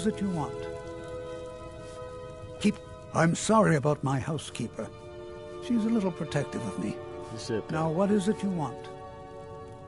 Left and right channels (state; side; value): identical; both; correlation 1.00